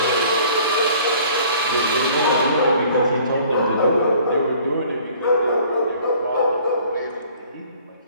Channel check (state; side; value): inverted; both; correlation -0.53